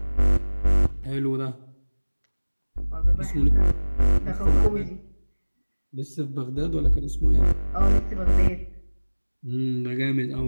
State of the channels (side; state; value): both; inverted; correlation -1.00